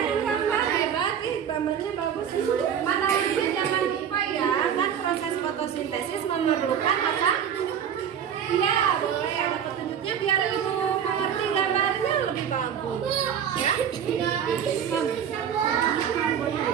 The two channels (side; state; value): left; quieter; 8.6 dB